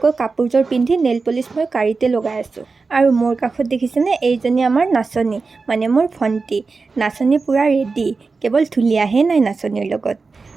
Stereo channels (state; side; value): quieter; left; 4.3 dB